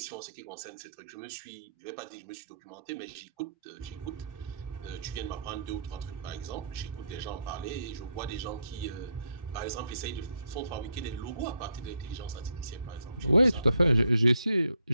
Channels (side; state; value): both; inverted; correlation -0.74